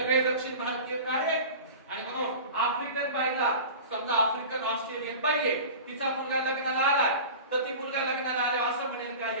दक्षिण भारतीय काळे. आणि म्हणून आफ्रिकन बाईला, समजा आफ्रिकन ऑस्ट्रेलियन बाई आहे, तिचा मुलगा लग्नाला आलाय, तर ती मुलगा लग्नाला आले असं म्हणेल का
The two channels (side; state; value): both; inverted; correlation -0.35